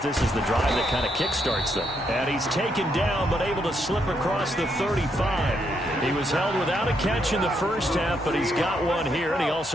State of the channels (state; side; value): normal; both; correlation 0.77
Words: is the drive that kind of kickstarts them. And he's taken down, but able to slip across the 35. He was held without a catch in the first half, but he's got one here, and he